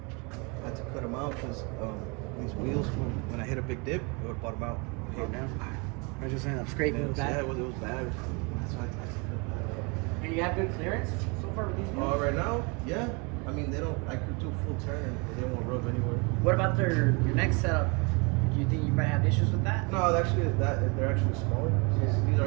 I had to cut them out because these wheels, when I hit a big dip, it would bottom out. Oh, damn. I was just saying, I'm scraping Yeah, it back. it was bad. That's why I had to cut that out. And you have good clearance so far with these wheels? Right now, yeah. I mean, they don't. I could do a full turn, but they won't rub anywhere. What about your next setup? Do you think you might have issues with that? No, actually, they're actually smaller. These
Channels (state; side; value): quieter; left; 30.7 dB